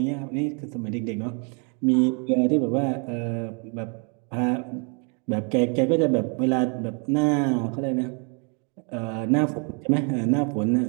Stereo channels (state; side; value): quieter; left; 36.4 dB